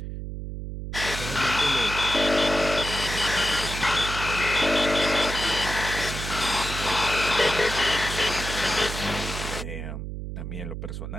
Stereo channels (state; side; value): noise; right; hum, 7 dB below the sound